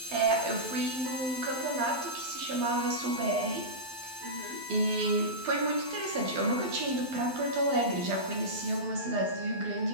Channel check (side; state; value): left; late; 12 ms